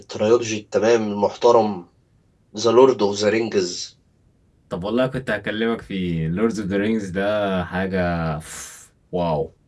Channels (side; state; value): both; identical; correlation 1.00